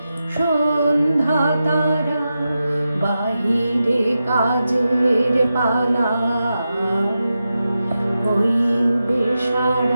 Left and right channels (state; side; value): inverted; both; correlation -0.90